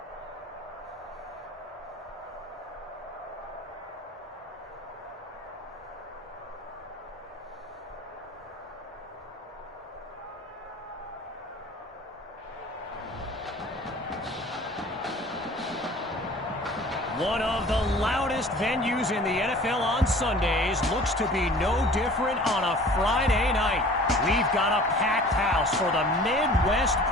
One of the loudest venues in the NFL on Sundays looks to be no different on a Friday night. We've got a packed house for the Midwest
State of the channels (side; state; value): both; normal; correlation 0.46